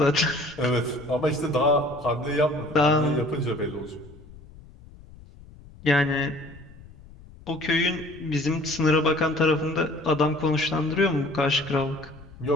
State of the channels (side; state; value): left; noise; rumble, 20 dB below the sound